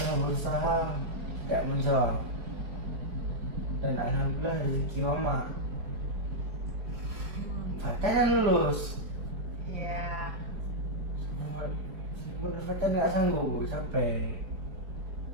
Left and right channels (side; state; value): left; late; 4.8 ms